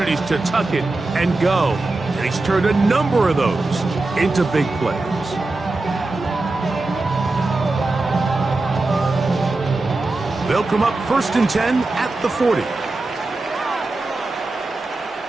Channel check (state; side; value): quieter; left; 3.2 dB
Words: to tuck it and go, and he's turned a number of those into big plays. They'll come up 1st and 10 at the 40.